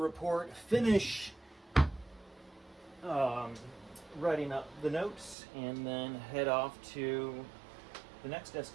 finish writing up the notes, and then head off to the next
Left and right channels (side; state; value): left; drops out; at 5.4 s